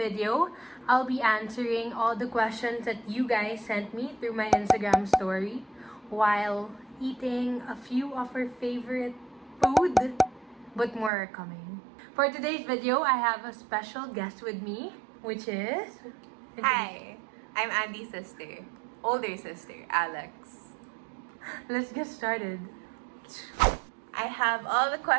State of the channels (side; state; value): left; drops out; at 11.1 s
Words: I'll be answering all the questions that you guys sent me through my Instagram story while eating a few of our favorite food, but more are coming. For today's video, I have a special guest with me, which is... Hi, I'm Andie's sister, older sister, Alex. Let's get started. I have all the